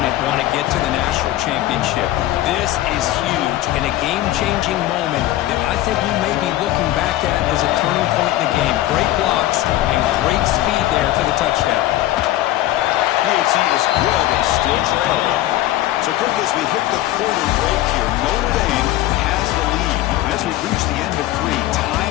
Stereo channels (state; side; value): quieter; right; 15.0 dB